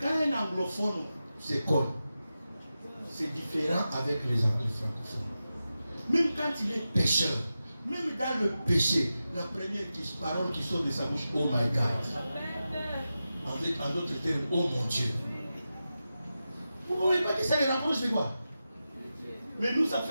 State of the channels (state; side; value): inverted; both; correlation -0.92